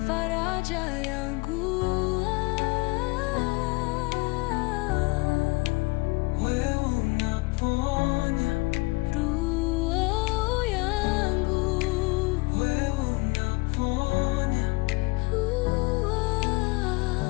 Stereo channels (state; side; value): quieter; right; 25.0 dB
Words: faraja yangu. Wewe unaponya roho yangu, wewe unaponya.